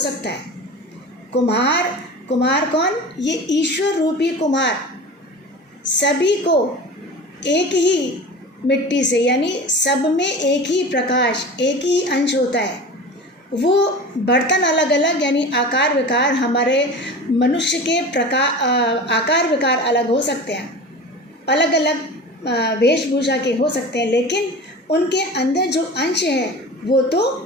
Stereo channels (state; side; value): normal; both; correlation 0.34